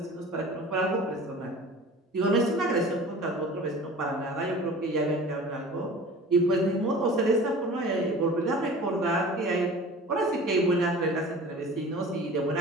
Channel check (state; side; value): normal; both; correlation 0.41